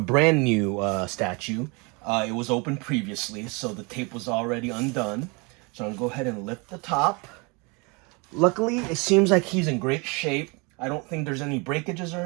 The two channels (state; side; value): quieter; left; 29.6 dB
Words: new statue. It was open previously, so the tape was already undone. So I'm going to go ahead and lift the top. Luckily, it seems like he's in great shape. I don't think there's any breakages or